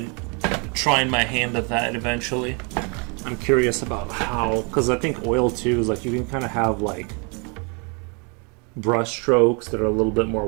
trying my hand at that eventually. I'm curious about how, because I think oil too is like you can kind of have like brush strokes that are a little bit more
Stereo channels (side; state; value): left; quieter; 33.8 dB